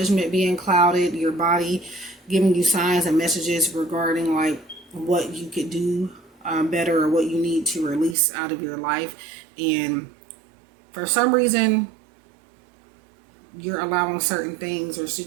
being clouded, your body giving you signs and messages regarding like what you could do better, or what you need to release out of your life. And for some reason, you're allowing certain things or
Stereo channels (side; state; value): left; drops out; at 8.2 s